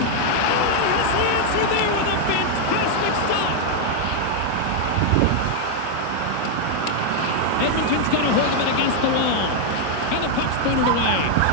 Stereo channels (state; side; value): different; both; correlation 0.00